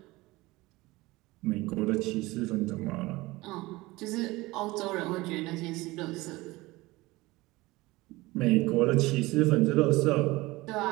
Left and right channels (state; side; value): quieter; left; 20.6 dB